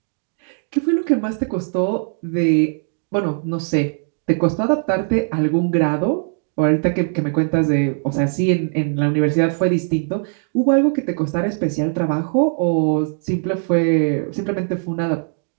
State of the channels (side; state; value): left; silent; 59 dB below the other